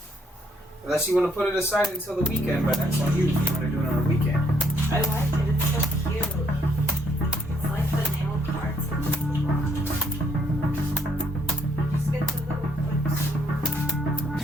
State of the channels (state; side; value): normal; both; correlation 0.70